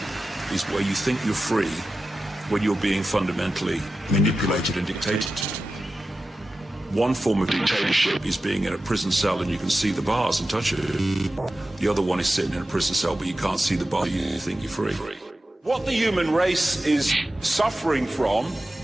is where you think you're free when you're being fundamentally manipulated and dictated to. One form of dictatorship is being in a prison cell and you can see the bars and touch it. The other one is sitting in a prison cell but you can't see the bar, you think you're free. What the human race is suffering from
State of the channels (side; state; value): both; normal; correlation 0.93